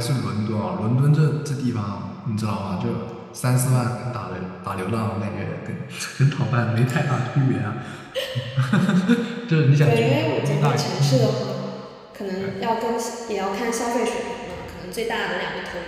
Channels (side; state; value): both; identical; correlation 1.00